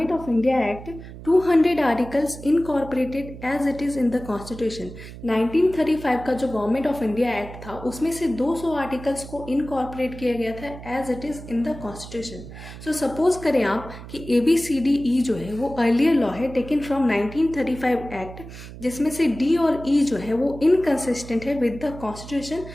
of India act 200 articles incorporated as it is in the constitution. 1935 का जो गवर्नमेंट ऑफ इंडिया एक्ट था उसमें से 200 आर्टिकल्स को इनकॉर्पोरेट किया गया था as it is in the constitution. So suppose करें आप कि ABCDE जो है वो अर्लियर लॉ है टेकन फ्रॉम 1935 एक्ट, जिसमें से D और E जो है वो इनकंसिस्टेंट है विद द कॉन्स्टिट्यूशन।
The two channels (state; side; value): noise; right; hum, 14 dB below the sound